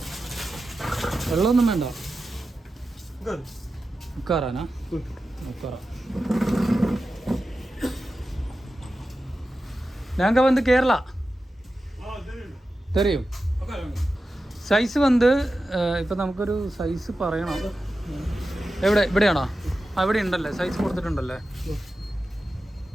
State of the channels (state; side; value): normal; both; correlation 0.92